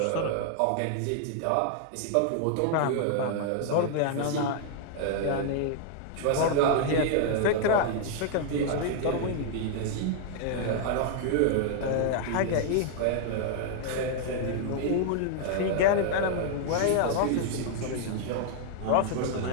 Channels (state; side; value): different; both; correlation 0.00